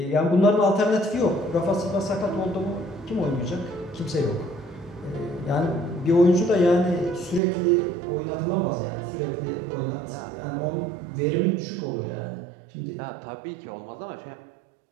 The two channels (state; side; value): drops out; left; at 7.4 s